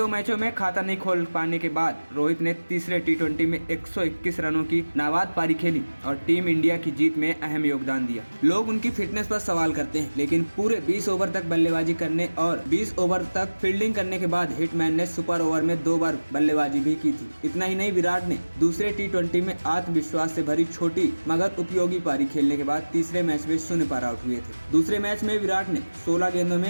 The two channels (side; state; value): both; inverted; correlation -1.00